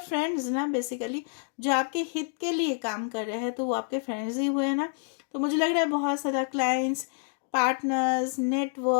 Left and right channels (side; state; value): right; silent; 59 dB below the other